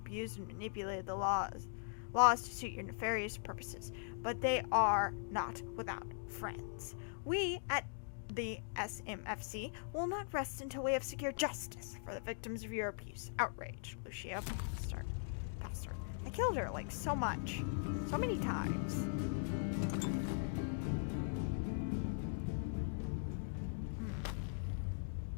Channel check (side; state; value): right; silent; digital silence